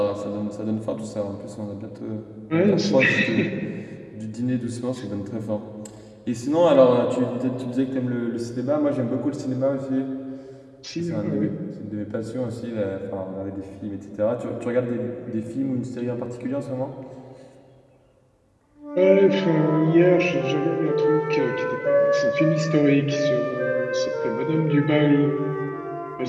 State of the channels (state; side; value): identical; both; correlation 1.00